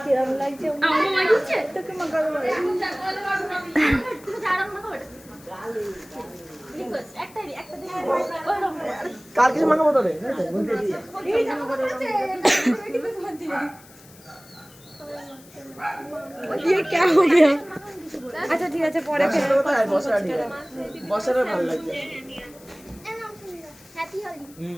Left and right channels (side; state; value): left; noise; hiss, 23 dB below the sound